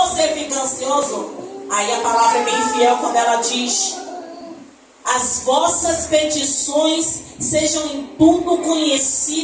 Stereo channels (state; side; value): identical; both; correlation 1.00